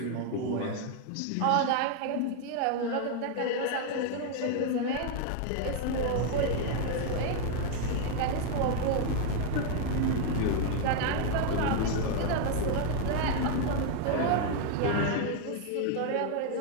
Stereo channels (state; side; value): different; both; correlation 0.00